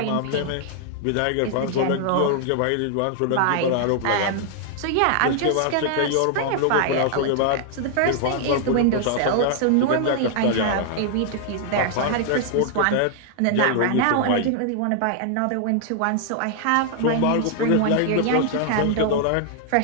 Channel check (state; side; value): different; both; correlation 0.00